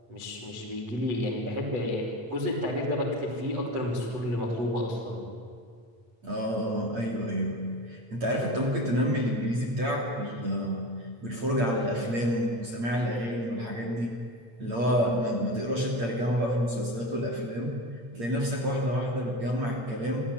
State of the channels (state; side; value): late; left; 8.7 ms